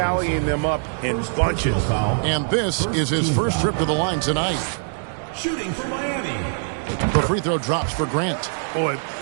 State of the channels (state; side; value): silent; left; digital silence